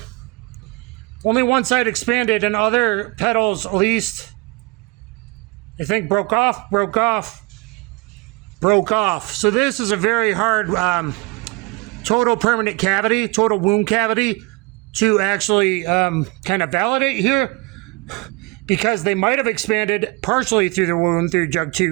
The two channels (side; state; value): left; quieter; 25.3 dB